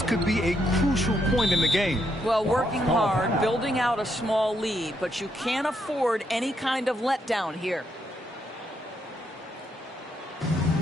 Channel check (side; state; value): both; normal; correlation 0.77